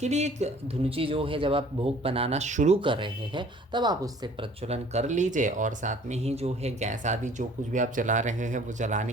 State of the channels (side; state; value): both; normal; correlation 0.53